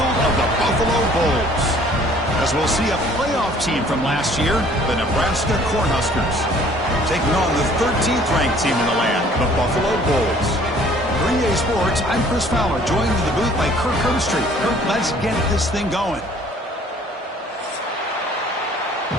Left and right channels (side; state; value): both; normal; correlation 0.55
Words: of the Buffalo Bulls. As we'll see a playoff team from last year, the Nebraska Cornhuskers, taking on the 13th ranked team in the land, the Buffalo Bulls. For EA Sports, I'm Chris Fowler, joined in the booth by Kirk Herbstreit. Kirk, let's get this thing going.